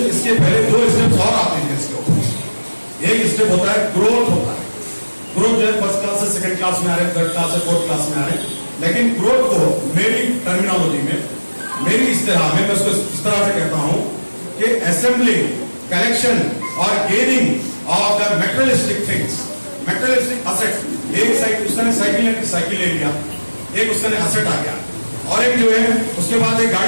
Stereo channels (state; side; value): inverted; both; correlation -1.00